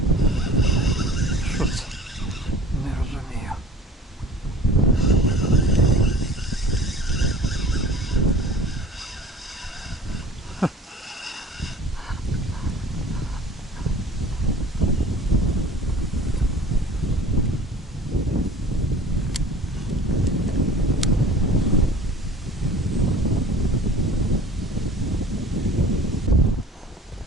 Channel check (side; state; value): both; normal; correlation 0.45